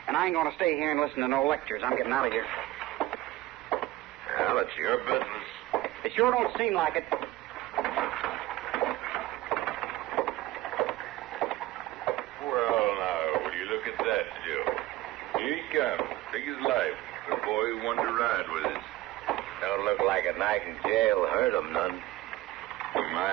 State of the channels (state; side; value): quieter; left; 16.8 dB